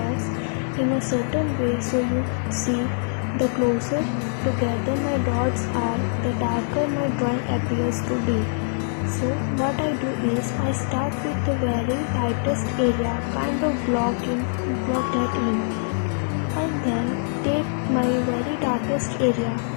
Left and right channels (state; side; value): silent; right; 63 dB below the other